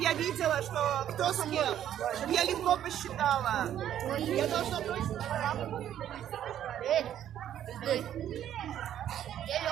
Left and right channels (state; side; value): quieter; left; 10.8 dB